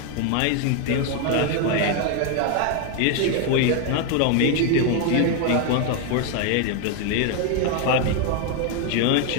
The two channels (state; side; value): different; both; correlation 0.01